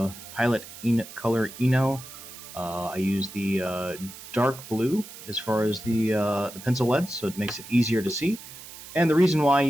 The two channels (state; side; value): noise; right; hiss, 15 dB below the sound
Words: Color Eno. I use the dark blue as far as the pencil leads, so it makes it easier to see. And the reason why I